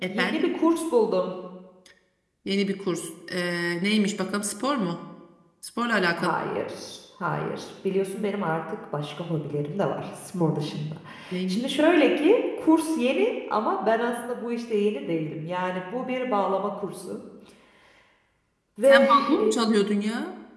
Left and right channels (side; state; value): both; identical; correlation 1.00